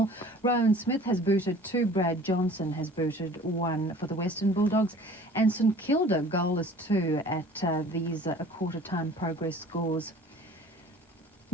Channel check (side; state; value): both; normal; correlation 0.47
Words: Rowan Smith has booted 2, Brad Johnson has booted 1 for the Western Bulldogs, and St Kilda goalless 2 at these quarter-time progress scores.